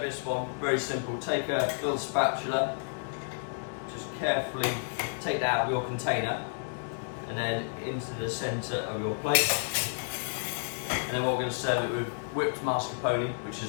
this one, very simple. Take a little spatula, just carefully take that out of your container and then into the centre of your plate. And then what we're going to serve it with whipped mascarpone, which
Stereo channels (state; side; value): silent; right; digital silence